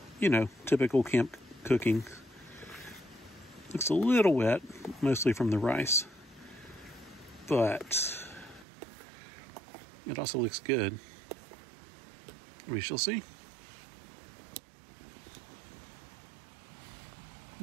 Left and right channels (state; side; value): drops out; left; at 8.7 s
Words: You know, typical camp cooking. Looks a little wet, mostly from the rice. But it also looks good. We shall see.